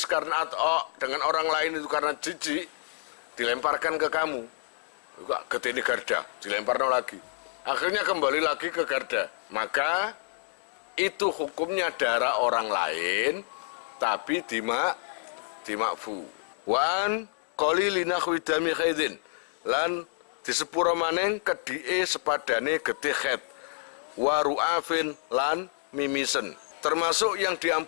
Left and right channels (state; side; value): silent; right; digital silence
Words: karena atau dengan orang lain itu karena jijik, dilemparkan ke kamu. Juga getih garda, dilemparkan lagi. Akhirnya kembali lagi ke garda. Maka itu hukumnya darah orang lain, tapi dimakfu. Wan qalili nahwi dami khaidin lan disepuro maneng kedhike sepadane getih khaid. Wa ru'afin lan mimisen. Termasuk yang